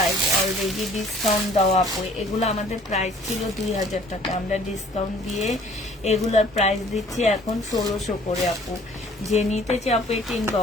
অলরেডি ডিসকাউন্ট দেওয়া আপু। এগুলো আমাদের প্রাইস ছিল 2000 টাকা, আমরা ডিসকাউন্ট দিয়ে এগুলোর প্রাইস দিচ্ছি এখন 1600 করে আপু। যে নিতে চাই আপু এই পিন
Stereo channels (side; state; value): both; normal; correlation 0.54